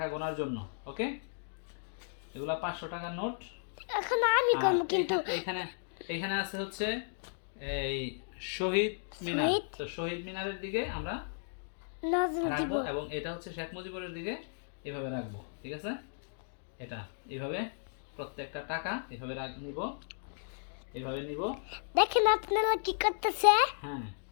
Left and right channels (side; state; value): right; silent; digital silence